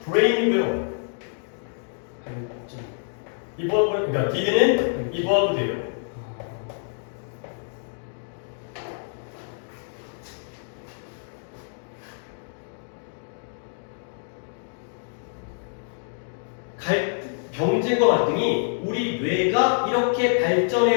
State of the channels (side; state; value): right; silent; digital silence